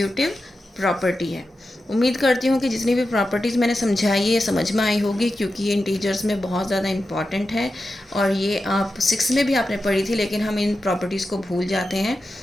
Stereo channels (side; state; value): both; normal; correlation 0.91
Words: प्रॉपर्टी है। उम्मीद करती हूँ कि जितनी भी प्रॉपर्टीज़ मैंने समझाई है समझ में आई होगी, क्योंकि ये इंटीजर्स में बहुत ज़्यादा इंपॉर्टेंट है और ये आप 6 में भी आपने पढ़ी थी, लेकिन हम इन प्रॉपर्टीज़ को भूल जाते हैं।